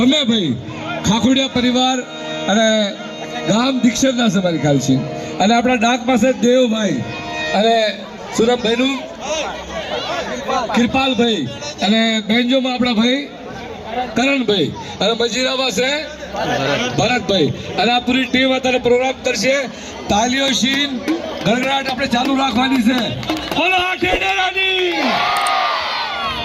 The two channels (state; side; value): identical; both; correlation 1.00